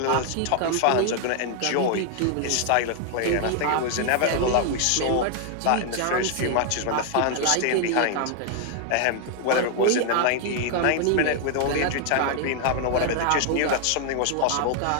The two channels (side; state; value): both; different; correlation 0.00